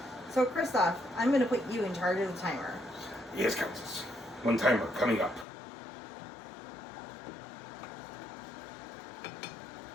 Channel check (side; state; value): right; drops out; at 5.5 s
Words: So, Christoph, I'm going to put you in charge of the timer. Yes, Countess. One timer coming up.